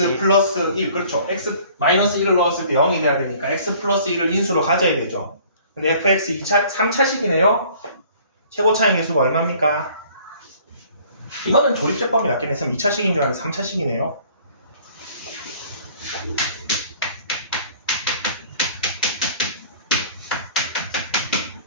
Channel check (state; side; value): inverted; both; correlation -0.53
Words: 플러스 1, 그렇죠. x 마이너스 1을 넣었을 때 0이 돼야 되니까 x 플러스 1을 인수로 가져야 되죠. 근데 fx 3차식이네요. 최고 차이 계수가 얼마입니까? 이거는 조립제법이 낫긴 했으면 2차식인 줄 알았는데 3차식이네요.